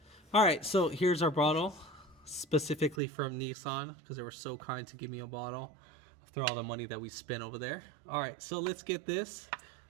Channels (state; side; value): drops out; left; at 3.0 s